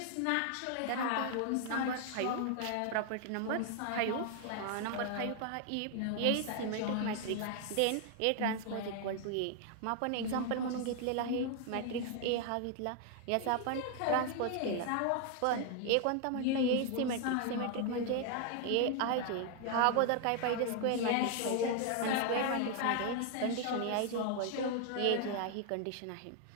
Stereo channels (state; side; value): different; both; correlation 0.00